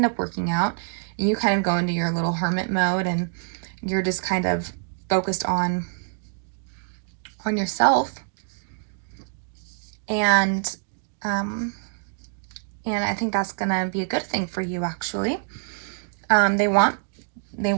up working out, and you kind of go into your little hermit mode, and you're just kind of focused on yourself. And I think that's gonna be a good thing for you, actually. They want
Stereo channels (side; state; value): left; silent; digital silence